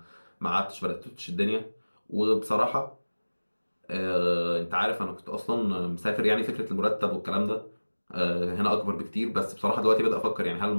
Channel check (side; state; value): both; inverted; correlation -1.00